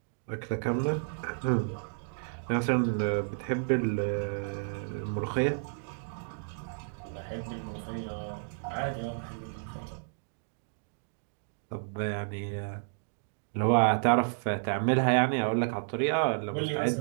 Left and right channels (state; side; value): silent; left; digital silence